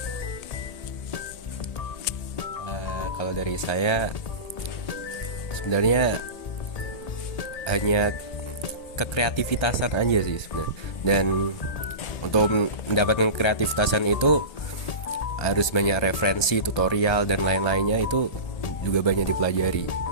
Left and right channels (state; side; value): late; right; 1.3 ms